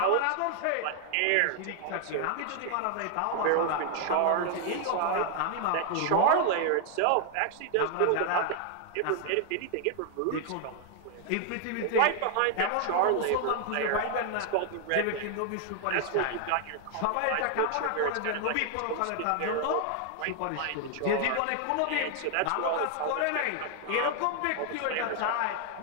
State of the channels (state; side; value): different; both; correlation 0.00